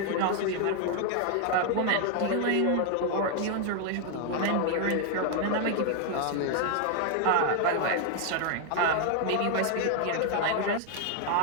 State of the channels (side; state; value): both; different; correlation 0.00